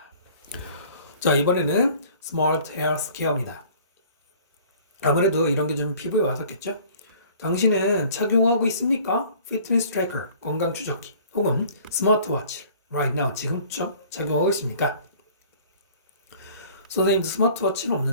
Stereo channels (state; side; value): inverted; both; correlation -0.50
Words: 자, 이번에는 스마트 헬스 케어입니다. 아무래도 이런 게 좀 피부에 와닿겠죠? 당신은 착용하고 있습니까? 피트니스 트래커, 건강 추적기 혹은 스마트워치 right now, 지금 착용하고 있습니까? 선생님도 스마트워치는